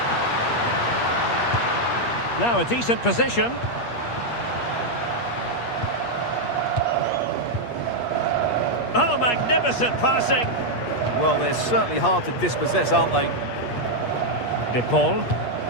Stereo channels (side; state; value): right; late; 8.4 ms